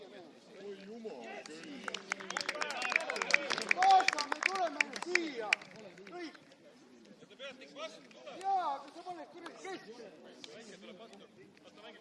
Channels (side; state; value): both; identical; correlation 1.00